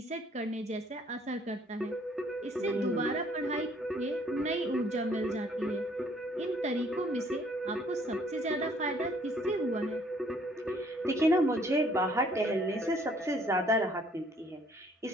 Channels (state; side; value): normal; both; correlation 0.62